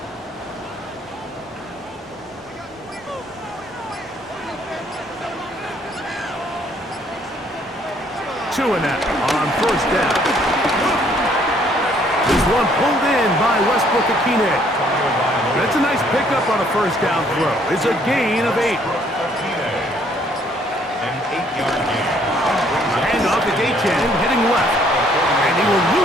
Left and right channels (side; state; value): both; normal; correlation 0.64